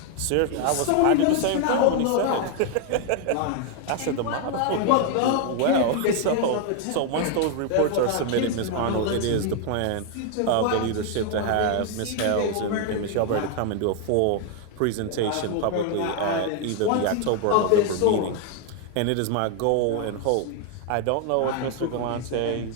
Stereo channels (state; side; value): different; both; correlation 0.01